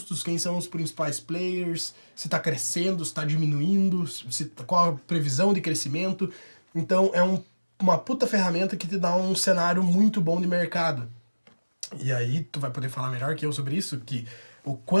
quem são os principais players, se está crescendo, se está diminuindo, qual a previsão de crescimento. Então é uma puta ferramenta que te dá um cenário muito bom de mercado. E aí tu vai poder falar melhor que eu sobre isso, que o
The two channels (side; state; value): both; inverted; correlation -1.00